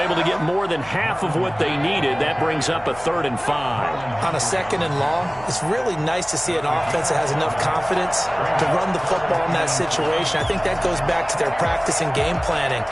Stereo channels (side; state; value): left; noise; hum, 21 dB below the sound